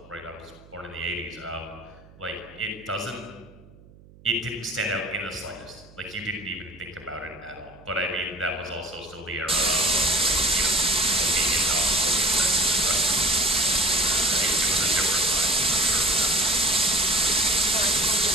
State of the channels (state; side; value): noise; right; hum, 24 dB below the sound